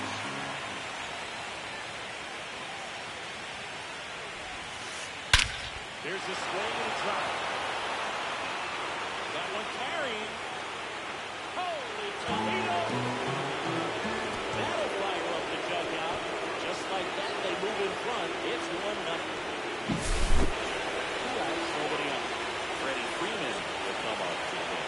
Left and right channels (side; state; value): both; identical; correlation 1.00